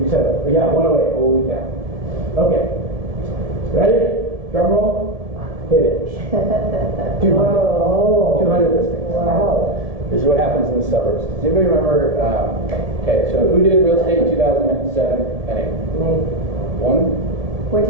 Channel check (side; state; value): left; late; 1.7 ms